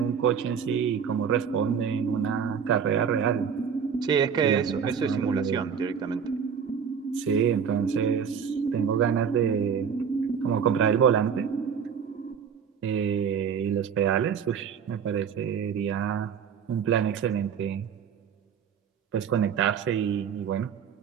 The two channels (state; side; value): quieter; left; 7.1 dB